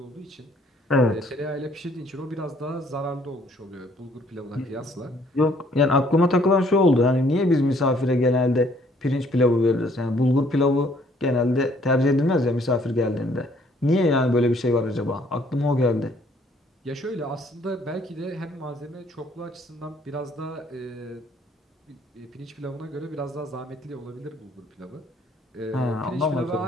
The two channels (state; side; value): normal; both; correlation 0.63